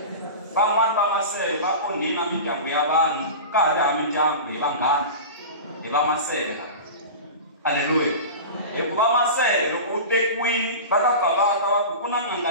van'wani va masele va onhina mindyangu ya vanhu ka ha ri ha mindyangu hi vanghana hi va masele aleluya hikuva masele loko u tekiwini va ta bavaka va ku na n'anga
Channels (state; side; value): inverted; both; correlation -0.30